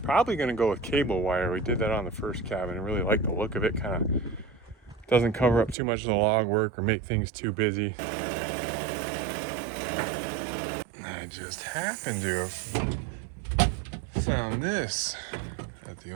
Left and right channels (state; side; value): drops out; left; at 5.8 s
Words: probably gonna go with cable wire. We did that on the first cabin and really like the look of it. Kind of doesn't cover up too much of the log work or make things too busy. I just happened to have found this at the